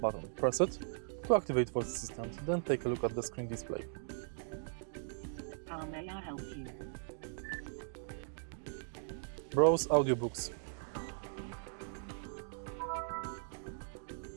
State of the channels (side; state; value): left; silent; digital silence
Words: button. Press it to activate voice assistant, then take a look at the screen display. How may I help you? Browse audiobooks.